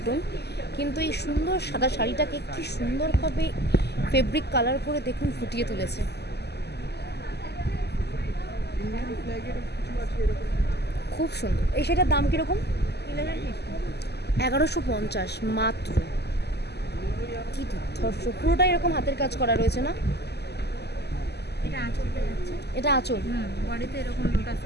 কিন্তু এই সুন্দর সাদা শাড়িটাকে কি সুন্দরভাবে ফেব্রিক কালার করে দেখুন ফুটিয়ে তুলেছে। খুব সুন্দর। এই শাড়িটার দাম কীরকম? 1150 মাত্র। কি দুর্ধর্ষ, পুরোটাই এরকম হাতের কাজ করা রয়েছে না? এটা আঁচল। বডিতে এরকম লোটাস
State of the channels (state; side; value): late; right; 0.48 ms